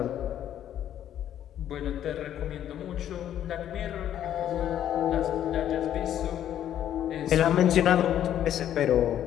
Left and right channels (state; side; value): quieter; right; 10.8 dB